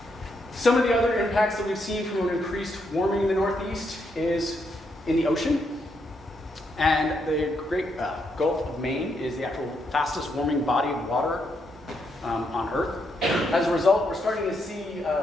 Some of the other impacts that we've seen from an increased warming in the Northeast is in the ocean. And the Great Gulf of Maine is the actual fastest warming body of water on Earth. As a result, we're starting to see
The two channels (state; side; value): normal; both; correlation 0.78